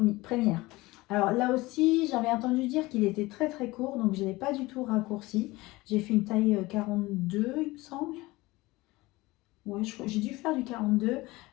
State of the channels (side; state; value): right; quieter; 20.7 dB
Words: Alors là aussi, j'avais entendu dire qu'il était très très court, donc je ne l'ai pas du tout raccourci. J'ai fait une taille 42, il me semble. Ouais, j'ai dû faire du 42